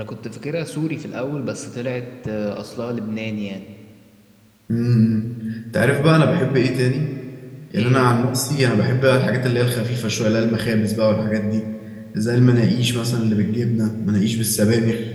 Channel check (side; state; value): both; identical; correlation 1.00